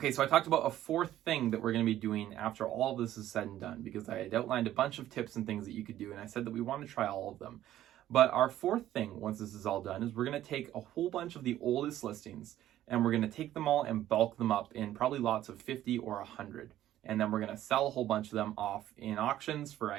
so I talked about a 4th thing that we're going to be doing after all of this is said and done, because I had outlined a bunch of tips and things that you could do, and I said that we want to try all of them. But our 4th thing, once this is all done, is we're going to take a whole bunch of the oldest listings and we're going to take them all and bulk them up in probably lots of 50 or 100. And then we're going to sell a whole bunch of them off in auctions for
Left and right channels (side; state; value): left; quieter; 13.0 dB